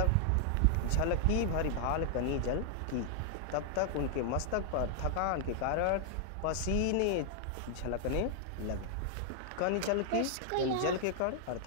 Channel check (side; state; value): both; different; correlation 0.00